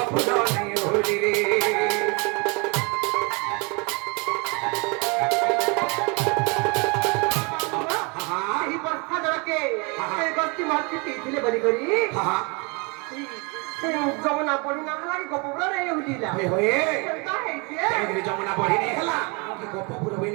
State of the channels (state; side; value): quieter; left; 30.8 dB